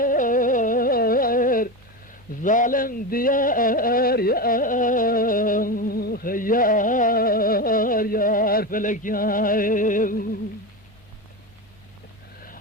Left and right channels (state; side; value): normal; both; correlation 0.19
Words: ظالم ديار يار يار فلك يار